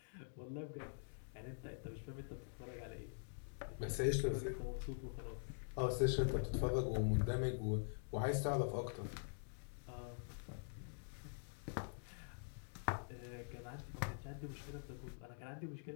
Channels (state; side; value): silent; right; digital silence